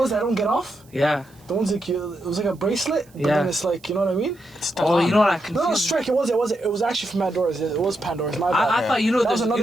that don't get off? Yeah. The ones like it was like a bracelet, but Yeah. then it's like, you know what I mean? Oh, you know what I No, confused? Strike. It was actually from Pandora's. It was Pandora's. My bad. I thought That was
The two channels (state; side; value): noise; right; hiss, 30 dB below the sound